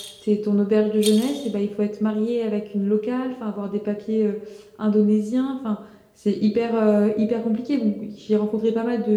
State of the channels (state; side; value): identical; both; correlation 1.00